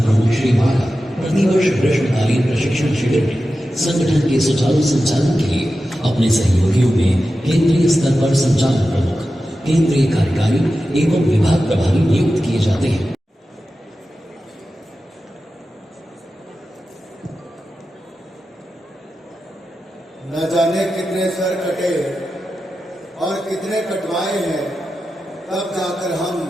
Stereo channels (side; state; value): both; normal; correlation 0.92